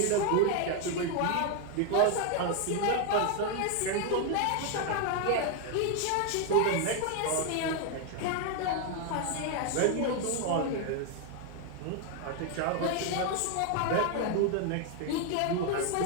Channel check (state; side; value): different; both; correlation 0.01